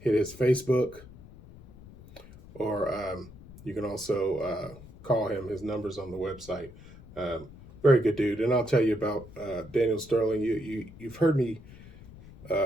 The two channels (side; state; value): left; noise; rumble, 19 dB below the sound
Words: his Facebook, or you can also call him. His number's on the website. Very good dude. And I'll tell you about Daniel Sterling. You've heard me